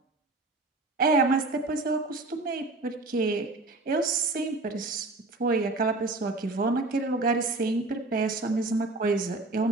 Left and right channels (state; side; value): quieter; left; 3.1 dB